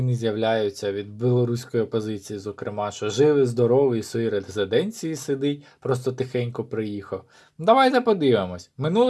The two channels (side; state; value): both; identical; correlation 1.00